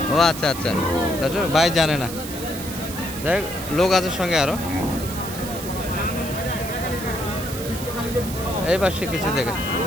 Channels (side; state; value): right; noise; hiss, 10 dB below the sound